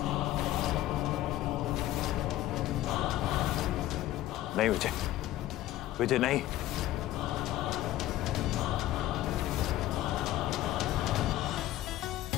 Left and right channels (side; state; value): right; quieter; 14.5 dB